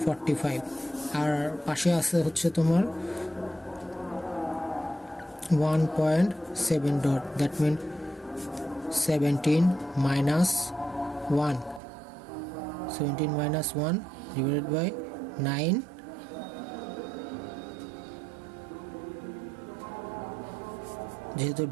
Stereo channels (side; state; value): left; drops out; at 11.8 s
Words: 45। আর পাশে আছে হচ্ছে তোমার 1.7 dot that mean 17 minus 1 divided by 9 যেহেতু